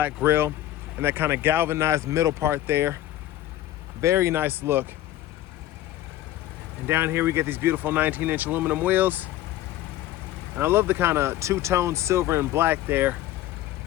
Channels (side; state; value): right; quieter; 13.9 dB